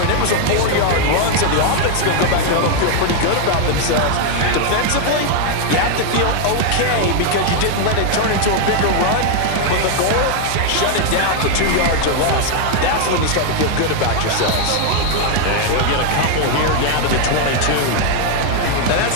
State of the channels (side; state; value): both; different; correlation 0.01